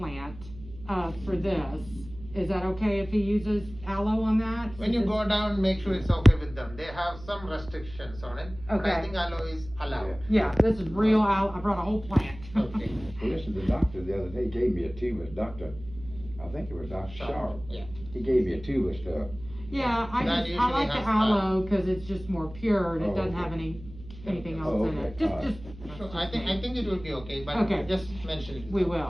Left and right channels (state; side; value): noise; right; hum, 16 dB below the sound